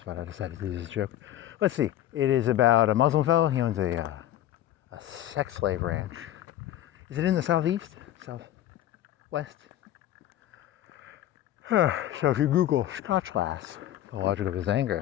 I decided to do this joke. Let's see. It is about a Muslim fellow. He owns a sex slave ranch. Is it in the southeast? Southwest? So if you Google Scotchlass, The Logic of His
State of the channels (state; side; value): quieter; right; 12.7 dB